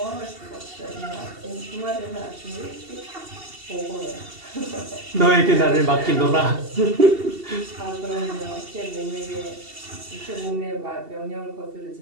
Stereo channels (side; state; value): left; late; 2.7 ms